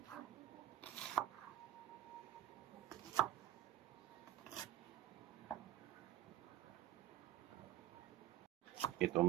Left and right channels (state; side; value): quieter; left; 12.9 dB